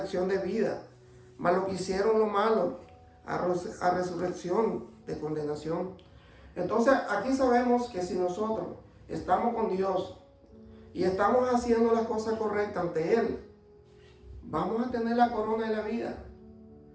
de vida, mas los que hicieron lo malo a resurrección de condenación. Entonces aquí sabemos que si nosotros estamos con Dios y estamos haciendo las cosas correctas ante Él, vamos a tener la corona de la vida.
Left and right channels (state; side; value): identical; both; correlation 1.00